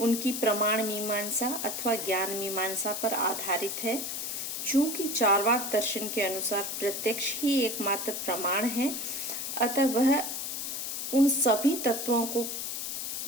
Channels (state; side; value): noise; left; hiss, 4 dB below the sound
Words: प्रमाण मीमांसा अथवा ज्ञान मीमांसा पर आधारित है। चूंकि चार्वाक दर्शन के अनुसार प्रत्यक्ष ही एकमात्र प्रमाण है, अतः वह उन सभी तत्वों को